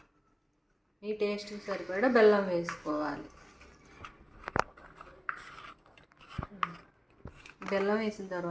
మీ టేస్ట్కి సరిపడా బెల్లం వేసుకోవాలి. బెల్లం వేసిన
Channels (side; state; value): both; identical; correlation 1.00